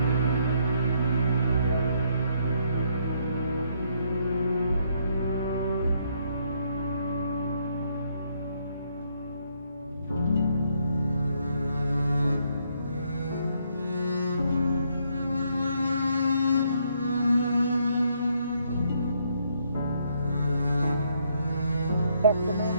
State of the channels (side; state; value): both; inverted; correlation -0.72